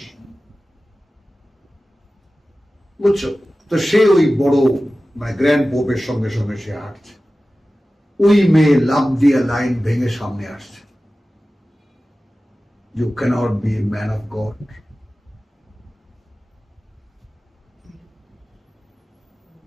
বুঝছো? তো সে ওই বড় মানে গ্র্যান্ড পোপের সঙ্গে সঙ্গে সে হাঁটছে। ওই মেয়ে লাফ দিয়ে লাইন ভেঙে সামনে আসছে। You cannot be a man of God.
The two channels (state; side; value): normal; both; correlation 0.96